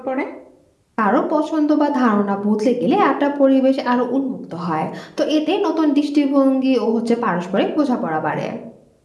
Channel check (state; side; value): identical; both; correlation 1.00